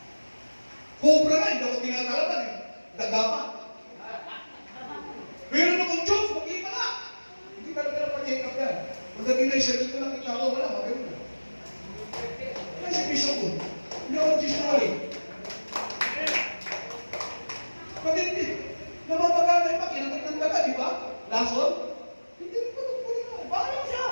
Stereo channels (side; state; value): both; inverted; correlation -1.00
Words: Cobra na, hindi ako tinatalaban eh. Daga pa. Pero kung Diyos, mag-iba ka. Hindi ka na pa-check up yan. Pagdating na isa dito lang, kita ko, wala, magayon na. Kaya si Bishop ko, hindi ako nagsisinungaling. Hindi. Namamagana yung makinagat ng daga, di ba? Lason? Hindi rin ko nagpuli na. Bakit siya?